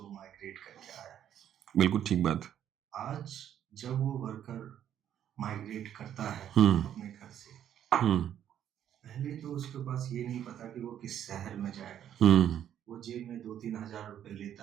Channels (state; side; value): quieter; left; 10.2 dB